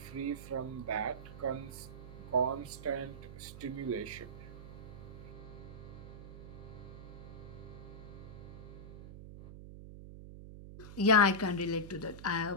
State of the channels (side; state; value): right; noise; hum, 12 dB below the sound